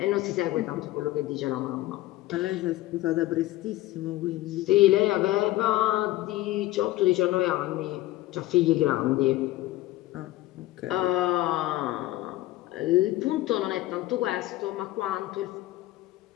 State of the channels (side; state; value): right; quieter; 16.8 dB